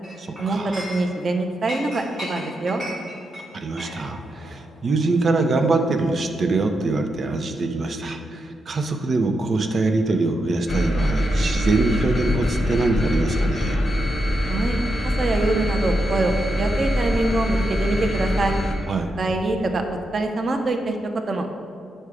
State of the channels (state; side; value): normal; both; correlation 0.85